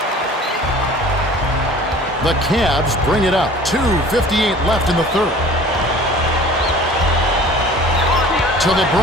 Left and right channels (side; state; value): both; normal; correlation 0.46